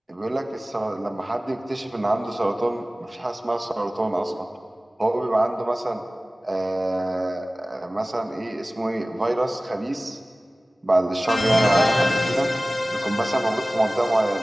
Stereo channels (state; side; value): normal; both; correlation 0.98